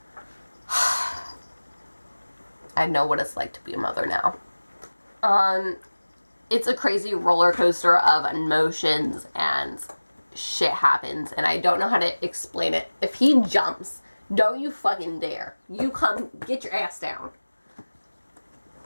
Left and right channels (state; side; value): inverted; both; correlation -1.00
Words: I know what it's like to be a mother now. It's a crazy roller coaster of emotions and shit happens, and I don't know how to explain it. If he jumps, don't you fucking dare. You come, get your ass down.